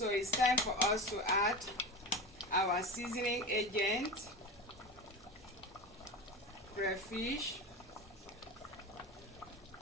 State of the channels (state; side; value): normal; both; correlation 0.25